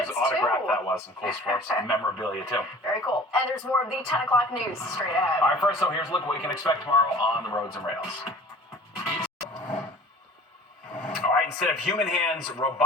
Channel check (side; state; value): both; normal; correlation 0.44